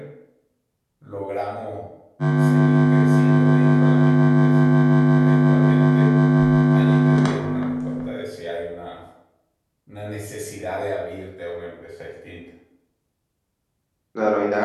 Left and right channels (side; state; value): both; identical; correlation 1.00